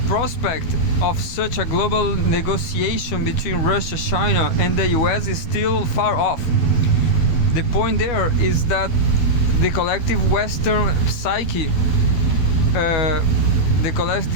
prospect of such a global negotiation between Russia, China, and the US is still far off. The point there is that the collective Western psyche,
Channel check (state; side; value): late; right; 12 ms